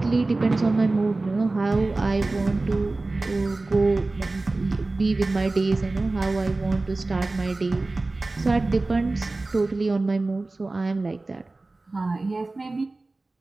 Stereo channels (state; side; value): quieter; left; 3.2 dB